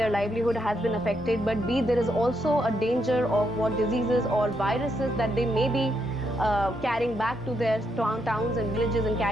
livelihood has been affected, but B, there is also a danger of what diseases or viruses that they may be carrying back to their towns and villages and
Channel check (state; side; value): normal; both; correlation 0.79